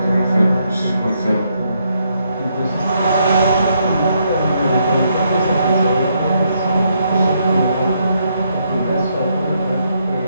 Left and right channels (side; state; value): both; inverted; correlation -0.75